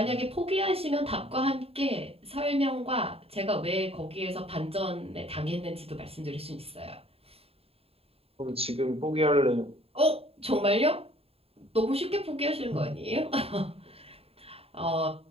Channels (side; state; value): left; late; 0.28 ms